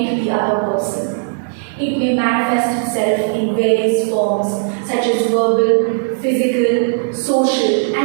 the other person. It may manifest itself in various forms such as verbal, physical, social,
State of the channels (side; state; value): left; silent; digital silence